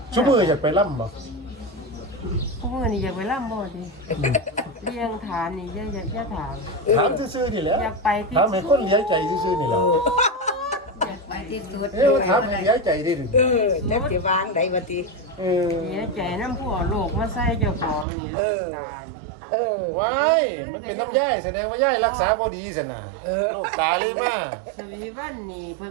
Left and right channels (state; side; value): drops out; left; at 18.1 s